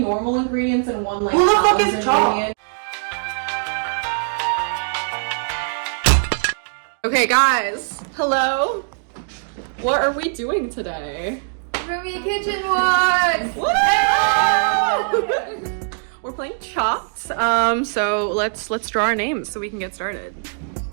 ingredients and 1 like who the fuck salad is chopped? ingredient. Okay guys, hello. What are we doing today? Roomie kitchen walk! We're playing Chopped. So let's draw our names so we can get started.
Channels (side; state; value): left; silent; digital silence